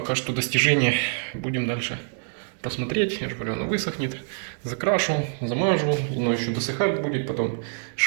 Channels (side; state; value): left; silent; 61 dB below the other